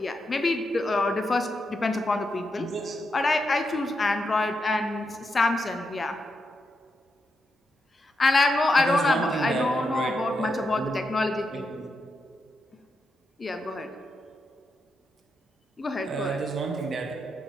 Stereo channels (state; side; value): normal; both; correlation 0.84